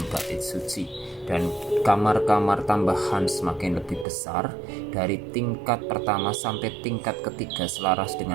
bait suci. Dan kamar-kamar tambahan semakin lebih besar, dari tingkat pertama sampai tingkat ketiga, selaras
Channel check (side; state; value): left; drops out; at 4.0 s